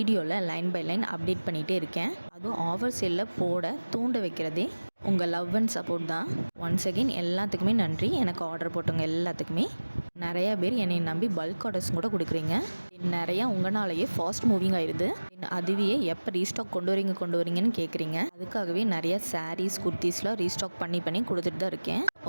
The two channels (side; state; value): both; inverted; correlation -1.00